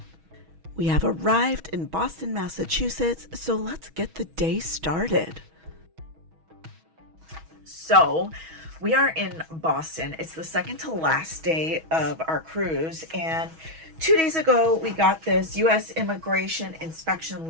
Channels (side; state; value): left; late; 6.2 ms